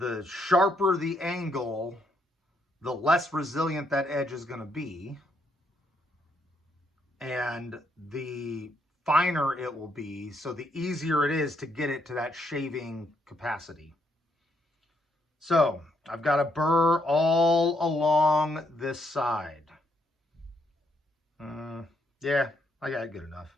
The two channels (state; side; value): normal; both; correlation 0.75